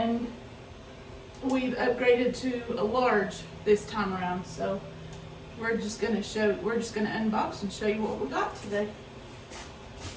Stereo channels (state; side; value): identical; both; correlation 1.00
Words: we've upgraded to a large this time around. So we're just gonna unbox and show you what we got today.